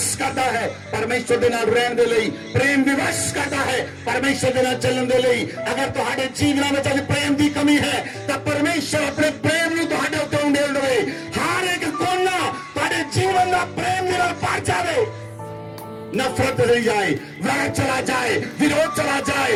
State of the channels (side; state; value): both; identical; correlation 1.00